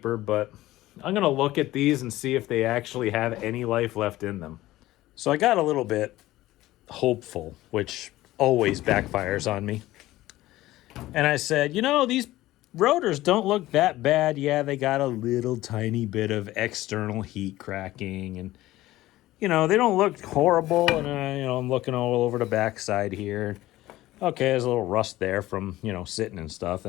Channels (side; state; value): right; quieter; 16.4 dB